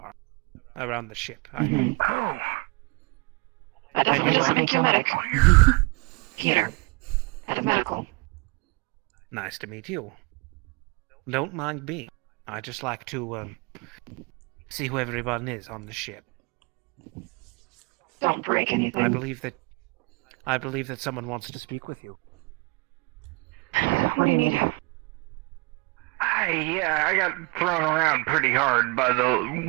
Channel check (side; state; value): left; quieter; 28.0 dB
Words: around the ship. I mean. That And definitely you doesn't are? make you a medic. Peter. Head of medical. Nice to meet you. Don't mind me. I just like to see who everyone is on the ship. Don't break anything. I believe that someone wants to speak with you. What do you need? I got thrown around pretty hard by